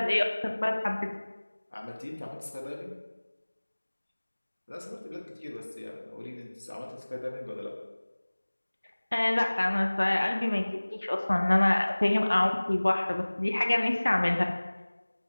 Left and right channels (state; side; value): inverted; both; correlation -1.00